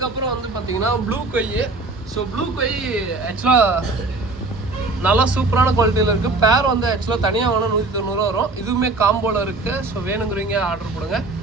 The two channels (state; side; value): quieter; left; 3.4 dB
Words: வந்து பார்த்தீங்கன்னா ப்ளூ கொய். ஸோ ப்ளூ கொய் ஆக்சுவலாக நல்லா சூப்பரான குவாலிட்டியில் இருக்குது. பேர் வந்து ஆக்சுவலாக தனியாக வேணால் 190 ரூபா வரும். இதுவுமே காம்போவில் இருக்குது. ஸோ வேணுங்கிறீங்க ஆர்டர் கொடுங்க.